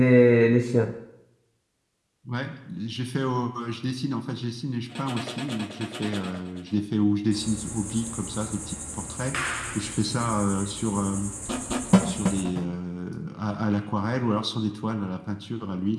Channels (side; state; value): both; identical; correlation 1.00